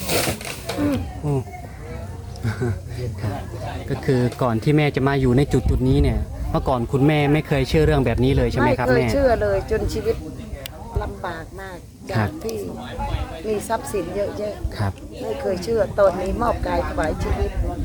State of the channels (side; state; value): both; identical; correlation 1.00